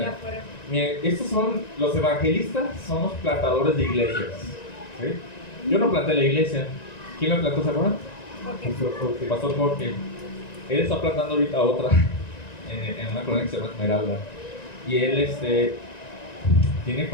afuera. Miren, estos son los evangelistas, son los plantadores de iglesias. ¿Sí? Yo no planté la iglesia. ¿Quién la plantó, se acuerdan? Pastor Jorge. Él está plantando ahorita otra en una colonia que se llama Esmeralda. Y él tiene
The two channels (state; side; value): late; right; 1.9 ms